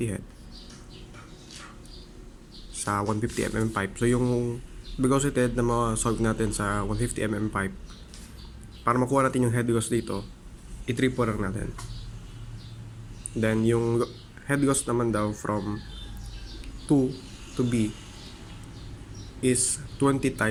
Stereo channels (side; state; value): both; identical; correlation 1.00